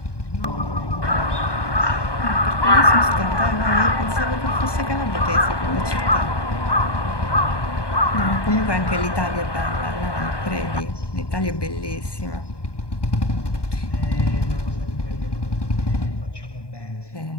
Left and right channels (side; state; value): right; late; 1.2 ms